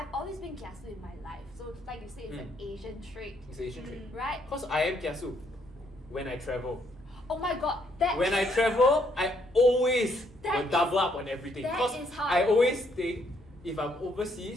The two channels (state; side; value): normal; both; correlation 0.71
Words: always been kiasu in my life. So like you say, it's an Asian trait. It's an Asian trait. Right? Because I am kiasu when I travel. Oh my god, When I travel, I always will double up on everything. that Because is how I I always think, if I'm